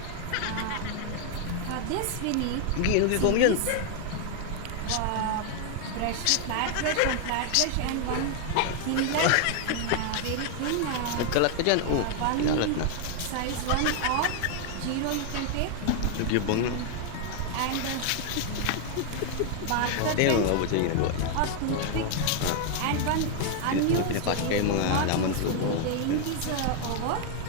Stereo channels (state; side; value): different; both; correlation 0.00